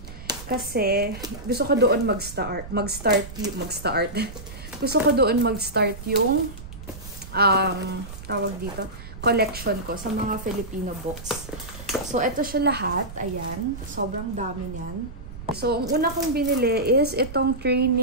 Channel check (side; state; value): right; noise; rumble, 13 dB below the sound